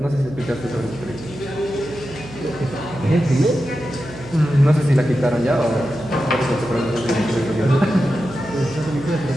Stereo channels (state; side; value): noise; right; hum, 16 dB below the sound